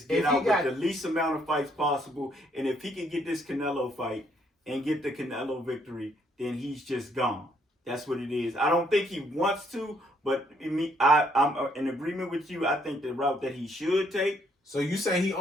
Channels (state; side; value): normal; both; correlation 0.69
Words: get If he out got- with the least amount of fights possible. And if he can get this Canelo fight and get the Canelo victory, then he's just gone. That's what it is. I don't think he wants to, but I'm in agreement with you. I think the route that he should take. So you say he